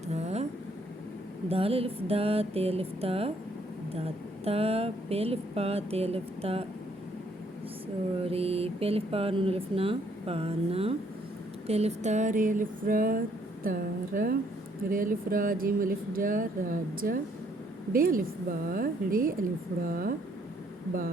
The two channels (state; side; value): normal; both; correlation 0.67